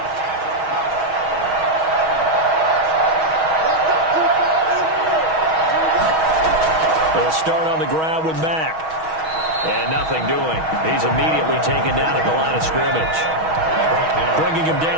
They'll start on the ground with Mack. And nothing doing. He's immediately taken down at the line of scrimmage. Bringing him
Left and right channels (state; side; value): late; left; 6.3 ms